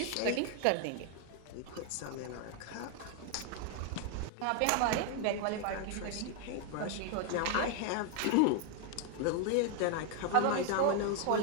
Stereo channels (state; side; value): different; both; correlation 0.01